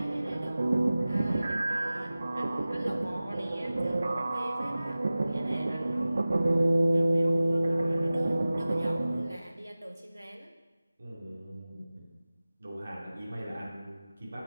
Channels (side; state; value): both; inverted; correlation -0.97